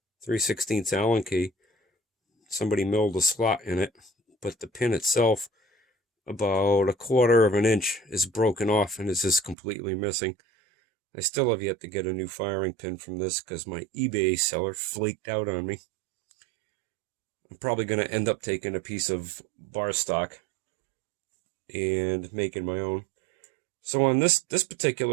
3/16 Allen key. Somebody milled a slot in it, but the pin itself, about 1/4 of an inch, is broken off and is just completely missing. I still have yet to get a new firing pin from this because my eBay seller flaked out on me. I'm probably going to end up taking a piece of bar stock and making my own. So on this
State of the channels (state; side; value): drops out; left; at 9.6 s